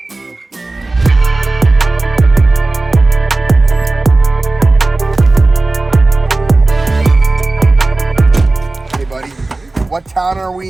What town are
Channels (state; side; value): quieter; left; 3.1 dB